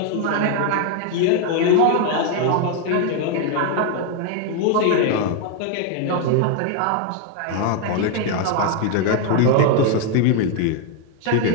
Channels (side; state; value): both; different; correlation 0.00